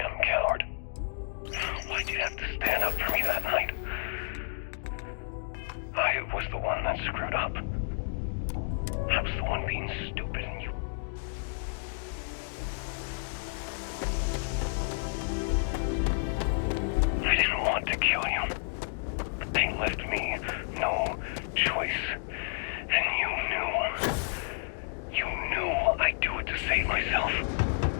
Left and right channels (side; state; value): right; silent; digital silence